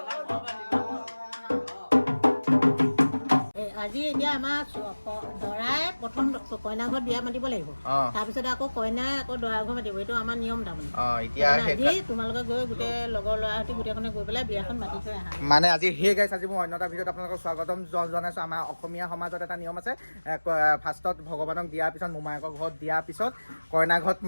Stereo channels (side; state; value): both; inverted; correlation -1.00